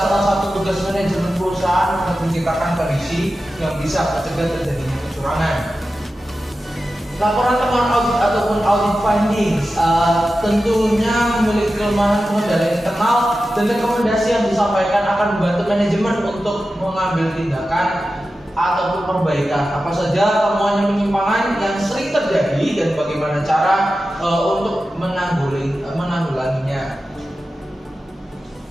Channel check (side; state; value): both; normal; correlation 0.93